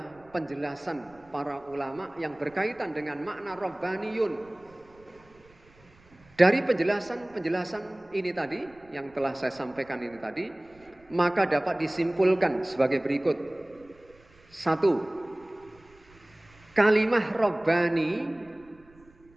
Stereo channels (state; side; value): noise; right; rumble, 28 dB below the sound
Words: penjelasan para ulama yang berkaitan dengan makna Rabbaniyun. Dari penjelasan ini tadi, yang telah saya sampaikan ini tadi, maka dapat disimpulkan sebagai berikut. 1. Kalimah Rabbani